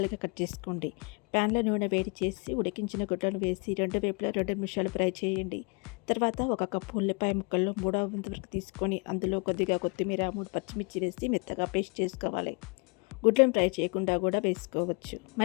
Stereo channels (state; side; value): quieter; right; 32.7 dB